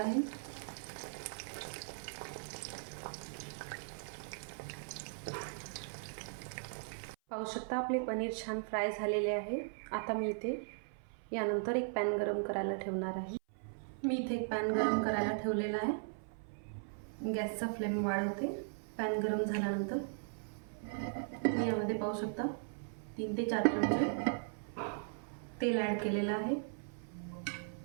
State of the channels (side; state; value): left; silent; 52 dB below the other